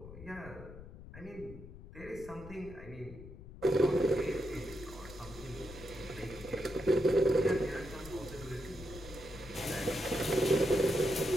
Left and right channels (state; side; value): noise; left; rumble, 15 dB below the sound